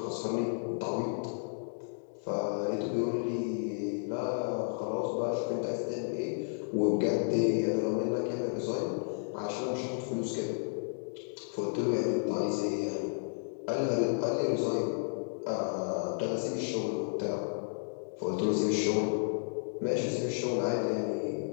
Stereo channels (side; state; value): right; silent; digital silence